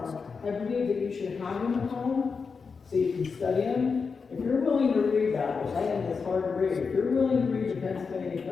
I believe that you should have them at home so you can study them. If you're willing to read that, which I think is hard to read, if you're willing to read the Pennsylvania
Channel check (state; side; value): quieter; right; 5.2 dB